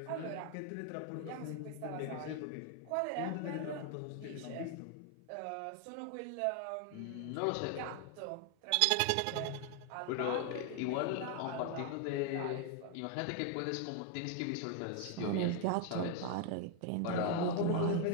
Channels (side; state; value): both; different; correlation 0.01